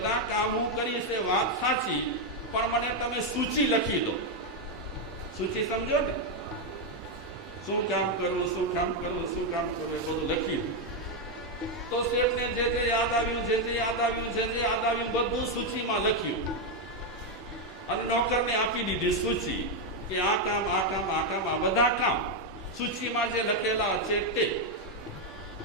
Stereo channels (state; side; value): normal; both; correlation 0.03